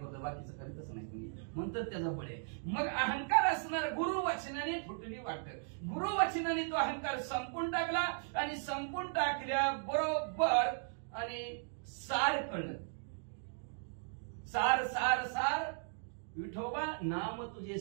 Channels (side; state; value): left; silent; digital silence